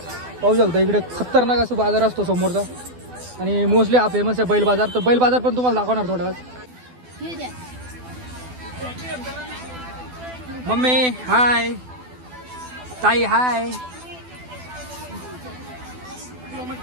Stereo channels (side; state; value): left; late; 12 ms